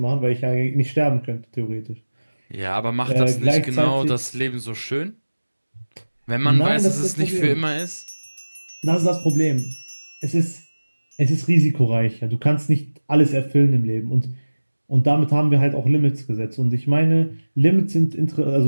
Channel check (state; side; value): inverted; both; correlation -1.00